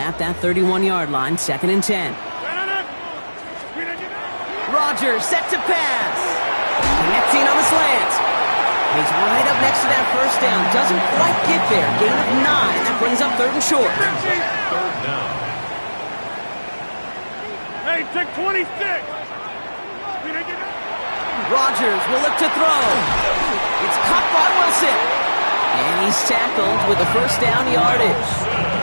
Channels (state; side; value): inverted; both; correlation -1.00